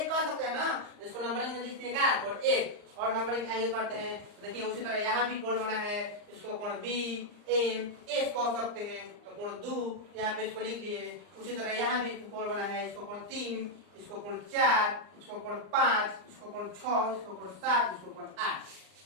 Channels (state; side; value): late; left; 39 ms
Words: कह सकते हैं ना, तो इसको नंबरिंग में लिखते हैं क्या, कोण एक, और नंबरिंग आगे करते हैं। तो देखिए, उसी तरह यहाँ भी कोण बना है, इसको कोण बी एम एस कह सकते हैं, तो कोण दो यहाँ पे इसको लिख लिए। उसी तरह यहाँ भी कोण बना है, इसको कोण 3, इसको कोण 4, इसको कोण 5, इसको कोण 6, इसको कोण 7, इसको कोण 8।